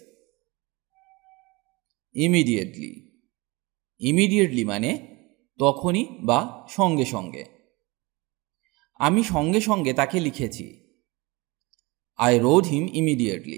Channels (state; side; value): quieter; left; 24.4 dB